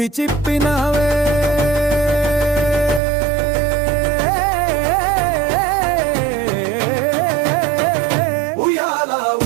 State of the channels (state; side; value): drops out; left; at 3.0 s